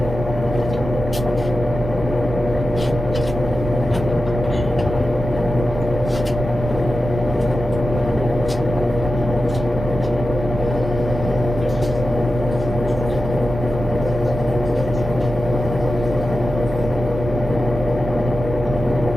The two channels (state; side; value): noise; right; rumble, 7 dB below the sound